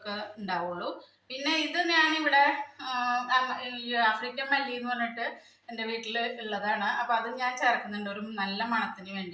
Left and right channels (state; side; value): identical; both; correlation 1.00